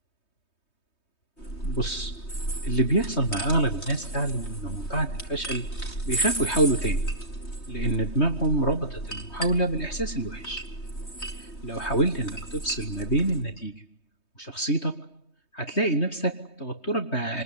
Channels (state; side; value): late; right; 3.2 ms